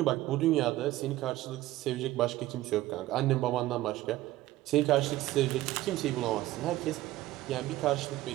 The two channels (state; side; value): quieter; left; 16.1 dB